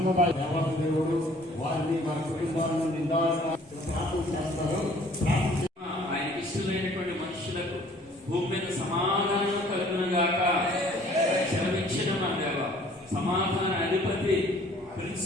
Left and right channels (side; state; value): both; normal; correlation 0.55